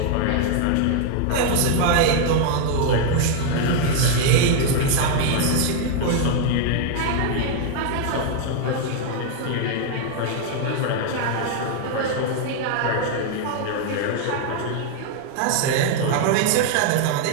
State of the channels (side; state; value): both; different; correlation 0.00